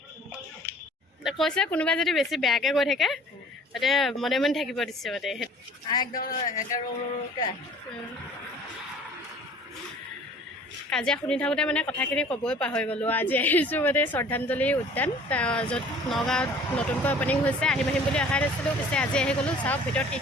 কৈছে কোনোবাই যদি বেছি বেয়াকৈ কৈ থাকে তাতে মনে মনে থাকিব দিছে মানে কাজিয়া শুনি থাকোঁতে মানে কথাখিনি ক'বই পাহৰি গ'লোঁ আজি আহিছোঁ মানে শ্ৰদ্ধাঞ্জলি উদ্যান য'ত নগাঁৱত নতুনকৈ অ'পেনিং হৈছে আহিম আহিম বুলি অহা নাছিলোঁ পিছে আজি আহি গ'লোঁ চাওক ভিতৰত কি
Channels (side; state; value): both; normal; correlation 0.50